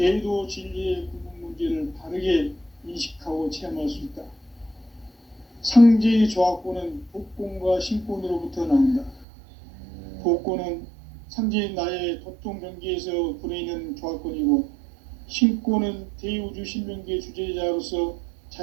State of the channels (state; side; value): drops out; left; at 9.2 s